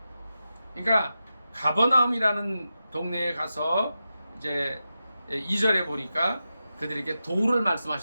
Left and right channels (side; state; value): both; inverted; correlation -0.91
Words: 그러니까 가버나움이라는 동네에 가서 이제 2절에 보니까 그들에게 도를